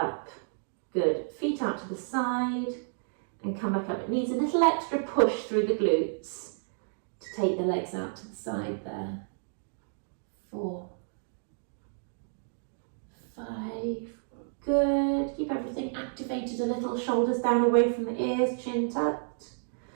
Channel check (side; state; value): left; silent; digital silence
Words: Good. Feet out to the side and come back up. It needs a little extra push through the glutes to take the legs out to the side there. 4, 5. Good. Keep everything activated a little. Shoulders down away from the ears, chin tucked.